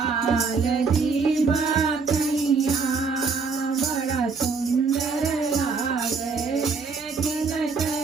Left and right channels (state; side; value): quieter; left; 4.8 dB